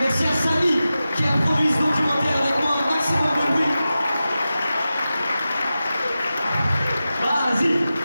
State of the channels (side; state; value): both; inverted; correlation -0.94